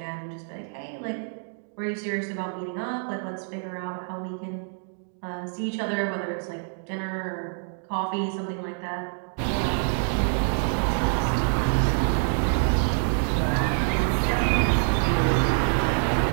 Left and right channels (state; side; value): silent; left; 56 dB below the other